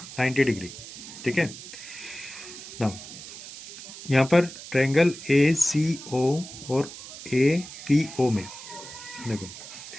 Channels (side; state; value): right; noise; hiss, 13 dB below the sound